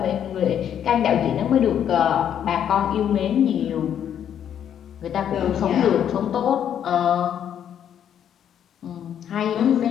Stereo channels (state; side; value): quieter; right; 9.4 dB